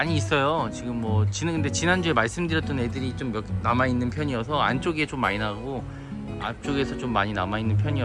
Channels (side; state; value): both; identical; correlation 1.00